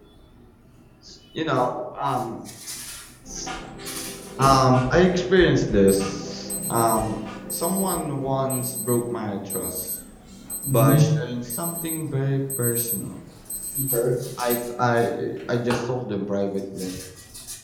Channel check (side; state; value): both; identical; correlation 1.00